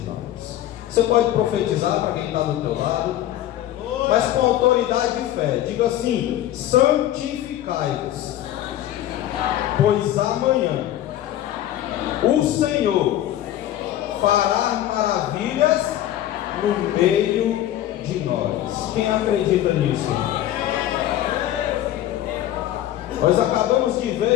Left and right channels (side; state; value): right; quieter; 12.9 dB